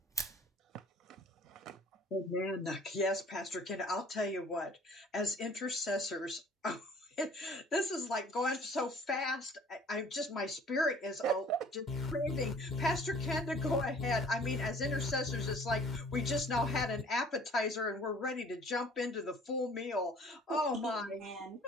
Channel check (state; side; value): normal; both; correlation 0.53